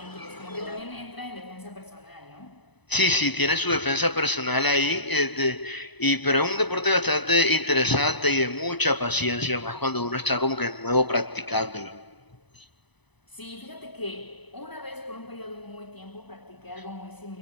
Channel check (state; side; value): late; right; 1.0 ms